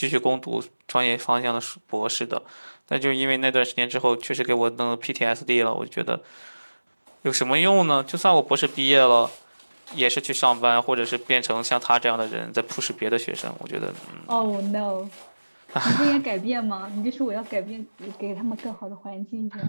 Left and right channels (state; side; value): inverted; both; correlation -1.00